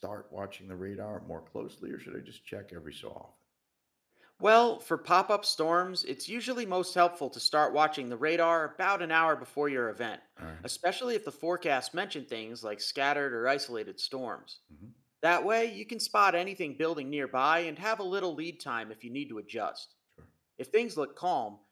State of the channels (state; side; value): identical; both; correlation 1.00